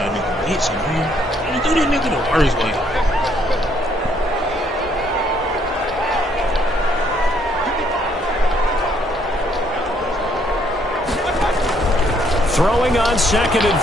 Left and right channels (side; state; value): both; normal; correlation 0.68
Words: Hits him, man. You do that nigga the worst way. Throwing on 2nd and